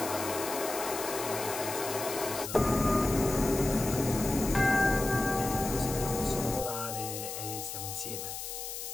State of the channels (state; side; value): noise; left; hiss, 7 dB below the sound